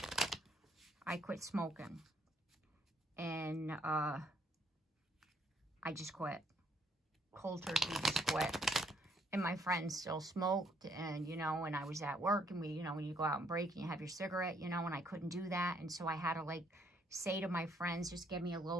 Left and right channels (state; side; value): normal; both; correlation 0.69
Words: I quit smoking. And I just quit. Cold turkey, just quit. And my friends still smoked, and, you know, and I was at work, and we, you know, when you go out and break and you have your cigarette, you know, and I couldn't do that. And so I had to, like, say to my friends, just give me a little